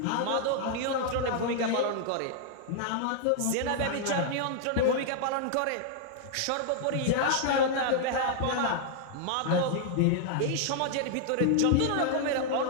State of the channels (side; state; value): both; different; correlation -0.01